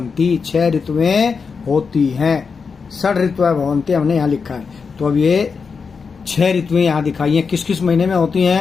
6 ऋतुएं होती हैं। षड ऋतुएं भवन्ति हमने यहाँ लिखा है। तो अब ये 6 ऋतुएं यहाँ दिखाई हैं। किस किस महीने में होती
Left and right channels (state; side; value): quieter; right; 5.4 dB